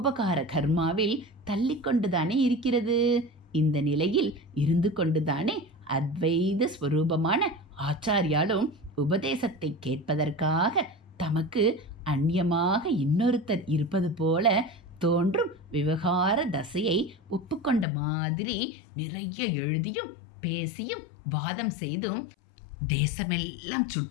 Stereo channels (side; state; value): right; drops out; at 17.9 s